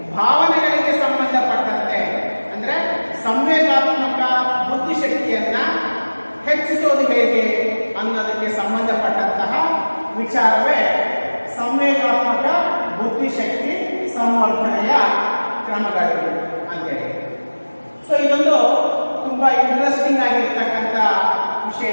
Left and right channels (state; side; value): inverted; both; correlation -1.00